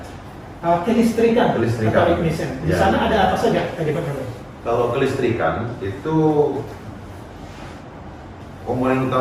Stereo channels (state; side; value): identical; both; correlation 1.00